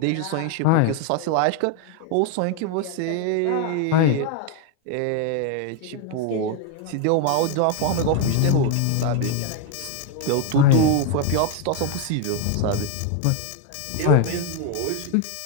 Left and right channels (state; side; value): different; both; correlation 0.01